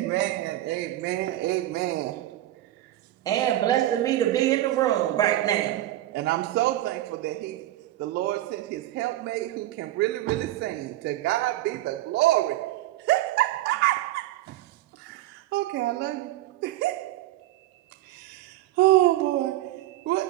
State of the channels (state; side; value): quieter; left; 15.0 dB